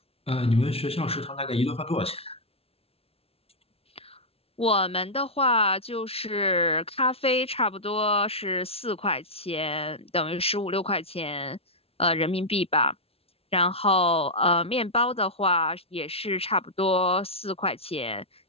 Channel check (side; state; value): right; late; 0.28 ms